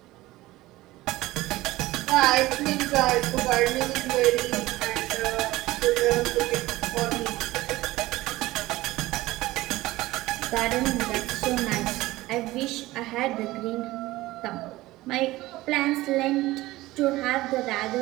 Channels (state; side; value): quieter; left; 18.1 dB